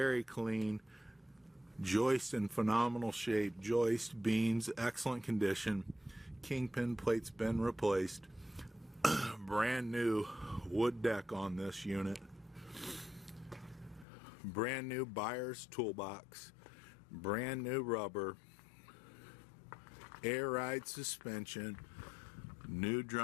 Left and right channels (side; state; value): right; drops out; at 14.1 s